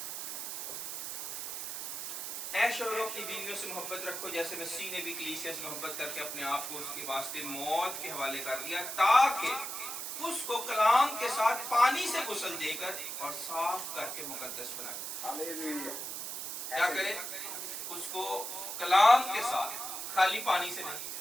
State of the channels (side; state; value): right; noise; hiss, 5 dB below the sound